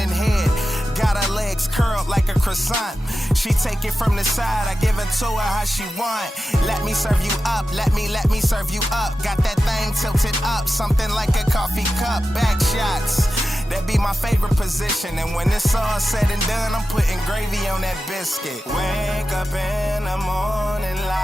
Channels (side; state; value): both; normal; correlation 0.93